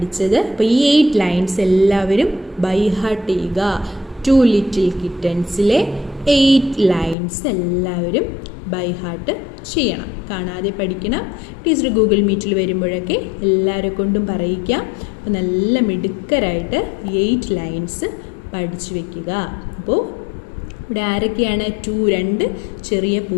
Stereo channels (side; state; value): right; drops out; at 7.2 s